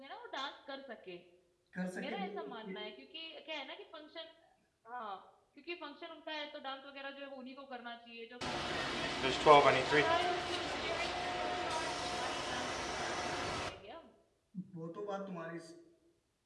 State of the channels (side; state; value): both; identical; correlation 1.00